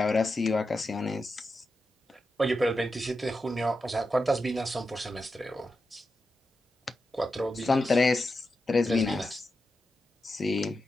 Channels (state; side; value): normal; both; correlation 0.89